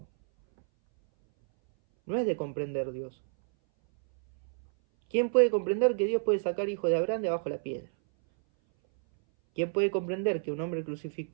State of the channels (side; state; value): left; silent; 58 dB below the other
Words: No es de comprender Dios. ¿Quién puede comprender que Dios puede sacar hijos de Abraham de abajo de la piedra? ¿Quién puede comprender que un hombre